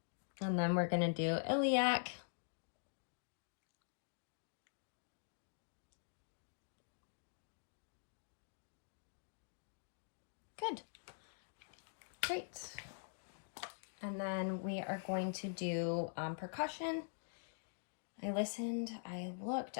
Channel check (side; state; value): right; silent; digital silence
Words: And then we're gonna do iliac. Good. Great. And then we are going to do percussion. I listened, I looked.